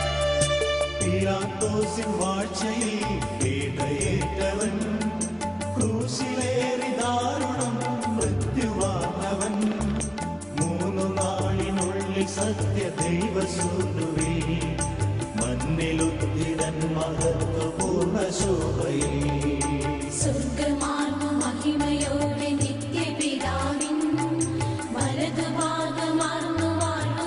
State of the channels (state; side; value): identical; both; correlation 1.00